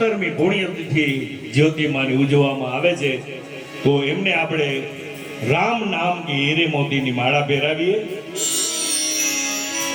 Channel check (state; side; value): identical; both; correlation 1.00